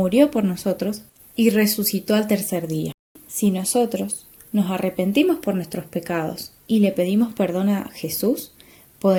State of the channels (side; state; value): both; identical; correlation 1.00